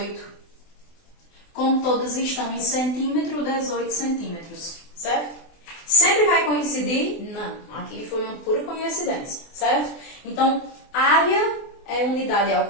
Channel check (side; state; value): right; late; 24 ms